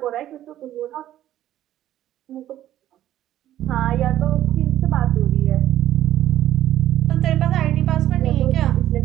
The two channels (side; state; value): left; quieter; 12.7 dB